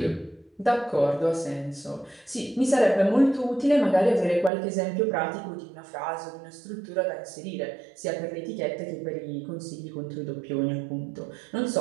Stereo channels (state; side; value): drops out; left; at 4.5 s